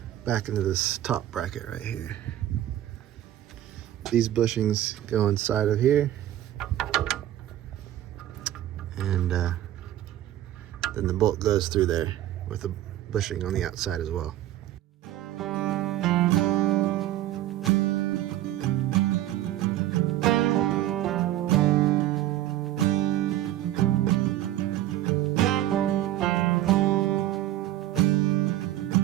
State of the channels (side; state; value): left; quieter; 13.5 dB